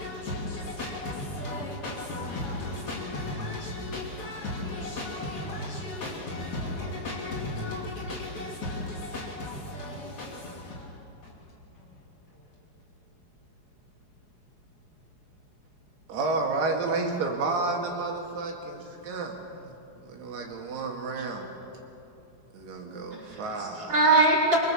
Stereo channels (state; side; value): late; left; 4.8 ms